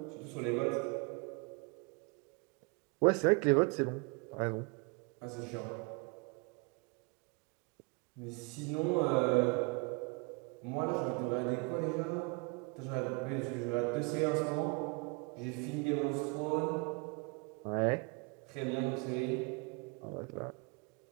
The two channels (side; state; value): left; quieter; 30.9 dB